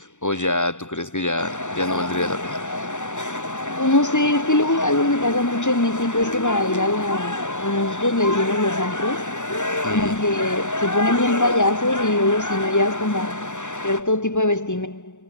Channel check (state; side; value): late; right; 0.85 ms